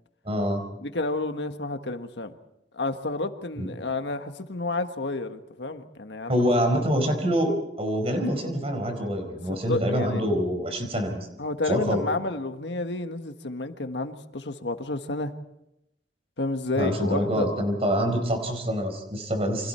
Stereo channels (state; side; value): normal; both; correlation 0.43